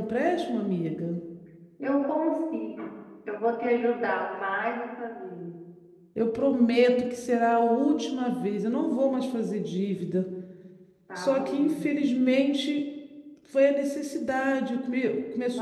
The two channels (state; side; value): identical; both; correlation 1.00